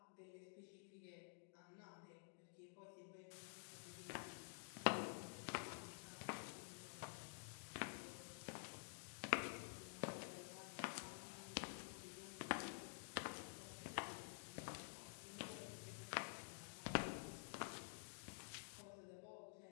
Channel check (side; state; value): right; silent; digital silence